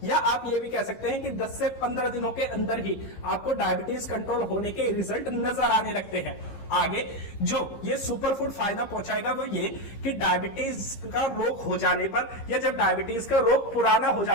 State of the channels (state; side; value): late; right; 15 ms